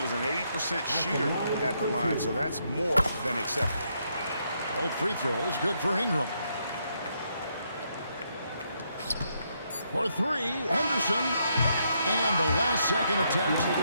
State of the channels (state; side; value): inverted; both; correlation -0.76